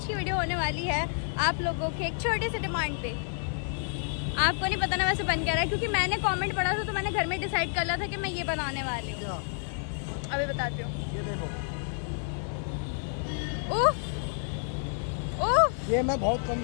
की वीडियो होने वाली है आप लोगों के एक छोटे से डिमांड पे। आपको नहीं पता ना वैसे बन क्या रहा है, क्योंकि मैंने कमेंट पढ़ा था तो मैंने घर में डिसाइड कर लिया था कि मैं ये बनाने वाली हूँ। अभी बताती हूँ। ये देखो, उफ उफ ये मैं बहुत कम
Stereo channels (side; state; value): right; silent; 58 dB below the other